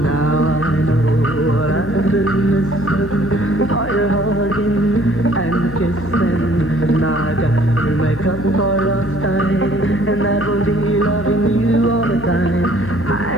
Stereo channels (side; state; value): left; noise; hum, 13 dB below the sound